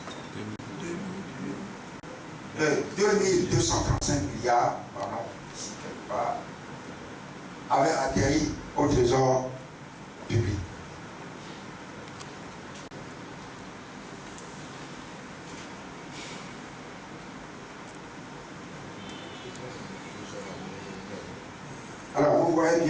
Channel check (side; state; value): both; identical; correlation 1.00